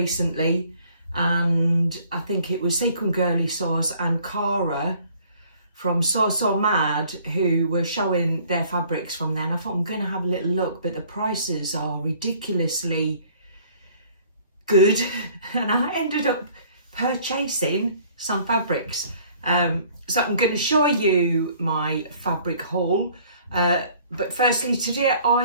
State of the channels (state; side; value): inverted; both; correlation -0.57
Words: and I think it was Sequin Girly Sews and Cara from So Mad who were showing their fabrics from there, and I thought I'm going to have a little look, but the prices are ridiculously good and I ended up purchasing some fabrics. So I'm going to show you my fabric haul, but firstly today